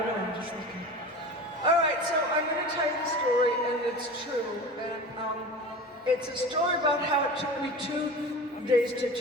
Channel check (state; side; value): normal; both; correlation 0.34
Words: know, I'm just looking. All right, so I'm gonna tell you the story, and it's true. And it's a story about how it took me 2 days to